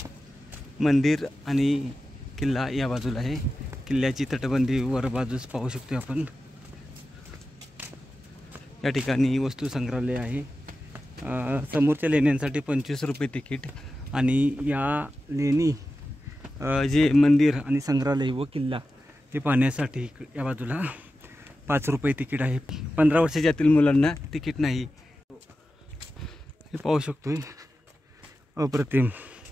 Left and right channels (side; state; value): both; normal; correlation 0.93